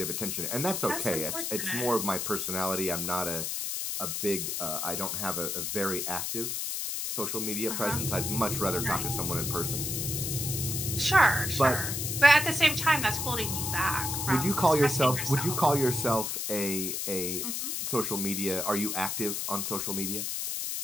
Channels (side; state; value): left; noise; hiss, 2 dB below the sound